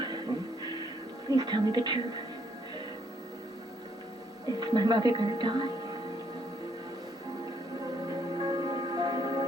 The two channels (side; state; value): both; normal; correlation 0.70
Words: please tell me the truth. Is my mother going to die?